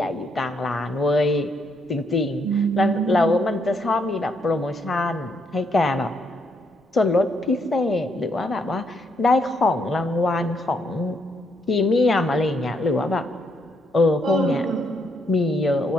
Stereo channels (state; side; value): normal; both; correlation 0.74